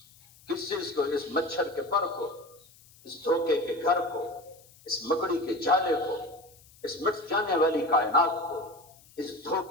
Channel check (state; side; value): noise; left; hiss, 26 dB below the sound